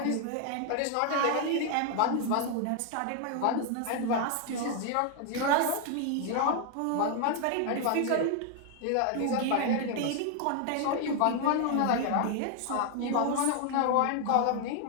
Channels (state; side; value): different; both; correlation 0.00